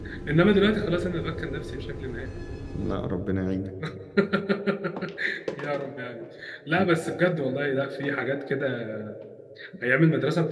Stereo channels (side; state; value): both; identical; correlation 1.00